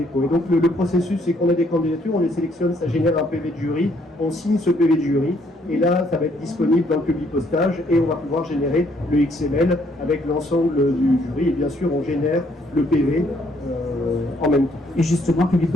Et donc le processus, c'est qu'on a des candidatures, on les sélectionne, ça génère un PV de jury, on signe ce PV de jury, et là ça va être disponible dans le Publipostage et on va pouvoir générer le XML avec l'ensemble du jury, et bien sûr on génère le PV en même temps. Et justement,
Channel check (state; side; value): normal; both; correlation 0.68